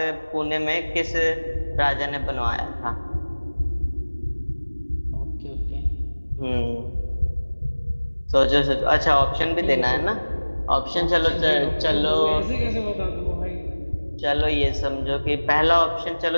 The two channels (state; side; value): inverted; both; correlation -1.00